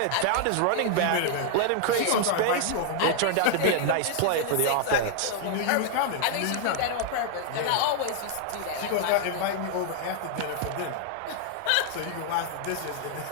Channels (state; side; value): different; both; correlation 0.00